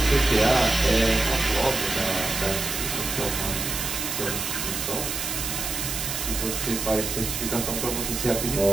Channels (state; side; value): noise; right; hiss, 3 dB below the sound